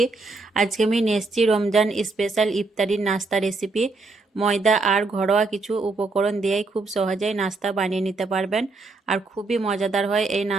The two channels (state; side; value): quieter; left; 3.6 dB